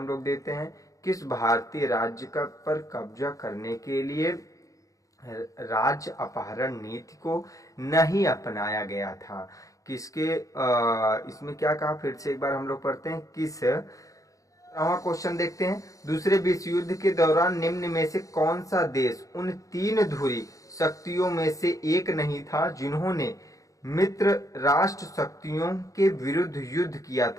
लोग देते हैं, किस भारतीय राज्य का पर कब्जा करने के लिए राज्य अपहरण नीति को नहीं अपनाया गया था? किसके इसमें क्या कहा? फिर से एक बार हम लोग पढ़ते हैं, किस क्वेश्चन देखते हैं, दूसरे विश्व युद्ध के दौरान निम्न में से कौन सा देश उन 3 ध्रुवीय शक्तियों में से एक नहीं था जिन्होंने मित्र राष्ट्र शक्तियों के विरुद्ध युद्ध किया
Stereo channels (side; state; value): right; late; 0.16 ms